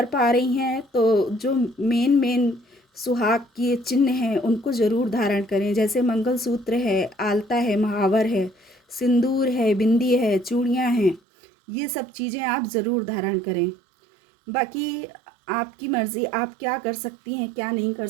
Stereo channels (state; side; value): drops out; left; at 11.2 s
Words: पा रही हैं तो जो मेन सुहाग के चिन्ह हैं उनको ज़रूर धारण करें। जैसे मंगलसूत्र है, आलता है, महावर है, सिंदूर है, बिंदी है, चूड़ियाँ हैं, ये सब चीज़ें आप ज़रूर धारण करें। बाकी आपकी मर्ज़ी, आप क्या कर सकती हैं क्या नहीं कर